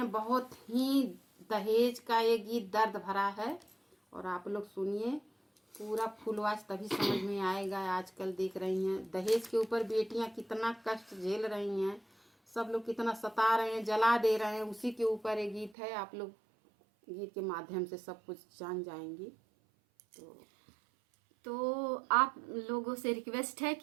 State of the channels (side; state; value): left; drops out; at 15.8 s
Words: बहुत ही दहेज का ये गीत दर्द भरा है और आप लोग सुनिए पूरा फुलवास तभी समझ में आएगा। आजकल देख रही हैं दहेज के ऊपर बेटियां कितना कष्ट झेल रही हैं, सब लोग कितना सता रहे हैं, जला दे रहे हैं, उसी के ऊपर ये गीत है। आप लोग गीत के माध्यम से सब कुछ जान जाएंगी। तो आप लोगों से रिक्वेस्ट है